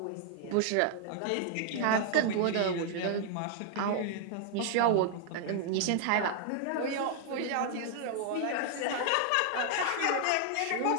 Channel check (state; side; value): different; both; correlation 0.00